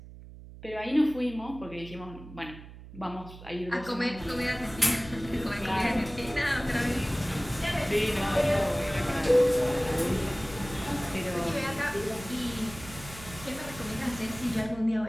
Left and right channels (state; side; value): noise; right; hum, 16 dB below the sound